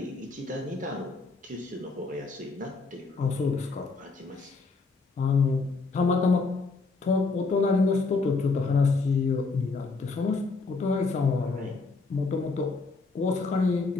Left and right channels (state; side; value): quieter; right; 3.9 dB